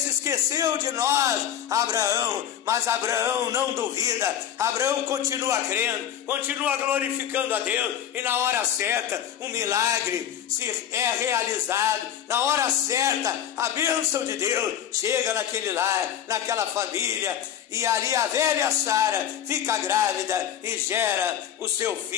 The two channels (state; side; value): quieter; right; 9.9 dB